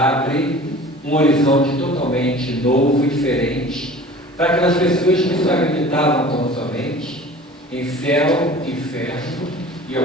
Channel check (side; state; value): both; normal; correlation 0.43